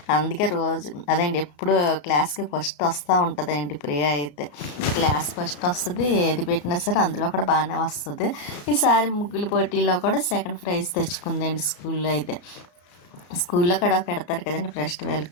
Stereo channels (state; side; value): late; right; 34 ms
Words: అందుకే రోజు ఎప్పుడు క్లాస్కి ఫస్ట్ వస్తూ ఉంటుందండి ప్రియా అయితే. క్లాస్ ఫస్ట్ వస్తుంది, ఏది పెట్టినా సరే అందులో కూడా బాగానే వస్తుంది. ఈసారి ముగ్గుల పోటీలో కూడా సెకండ్ ప్రైజ్ తెచ్చుకుందండి స్కూల్లో అయితే. స్కూల్లో కూడా పెడతారు కదండి ఫెస్టివల్